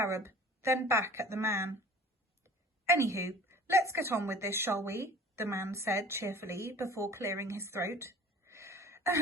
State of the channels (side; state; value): both; normal; correlation 0.46